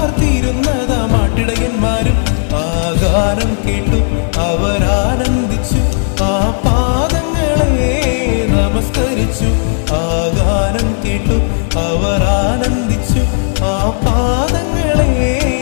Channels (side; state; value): right; silent; digital silence